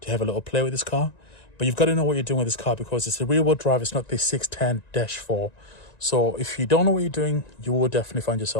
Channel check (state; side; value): late; right; 1.9 ms